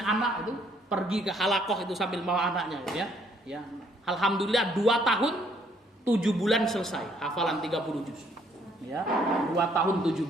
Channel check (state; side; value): normal; both; correlation 0.66